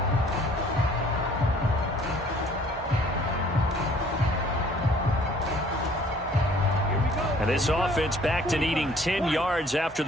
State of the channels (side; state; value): both; normal; correlation 0.57